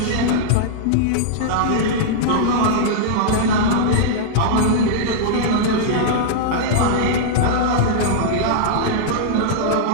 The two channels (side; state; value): both; different; correlation -0.02